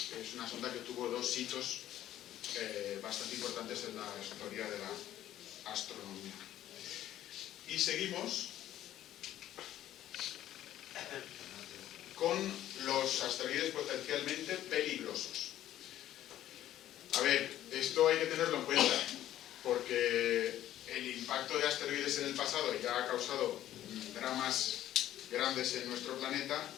Es una sonda que tuvo dos hitos bastante importantes en la historia de la astronomía. Y seguimos con los asteroides potencialmente peligrosos. A ver, esto hay que tenerlo en cuenta, porque el impacto de asteroides en el pasado ya ha causado dramas grandes en nuestro planeta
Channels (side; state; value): right; quieter; 12.7 dB